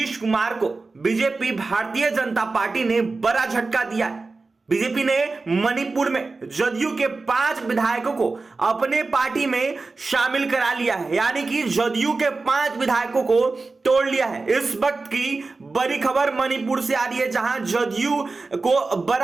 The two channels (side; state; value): left; quieter; 3.8 dB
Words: कुमार को बीजेपी भारतीय जनता पार्टी ने बड़ा झटका दिया है। बीजेपी ने मणिपुर में जदयू के 5 विधायकों को अपने पार्टी में शामिल करा लिया है, यानी कि जदयू के 5 विधायकों को तोड़ लिया है। इस वक्त की बड़ी खबर मणिपुर से आ रही है, जहां जदयू को